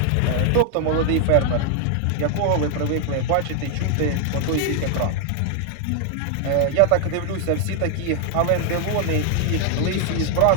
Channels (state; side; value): different; both; correlation 0.00